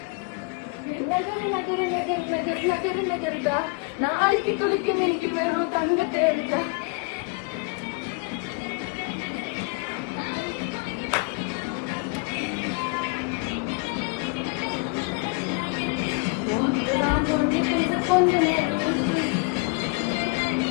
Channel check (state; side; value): quieter; right; 29.3 dB